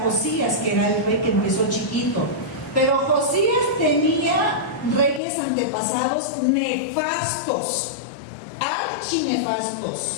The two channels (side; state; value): right; drops out; at 5.2 s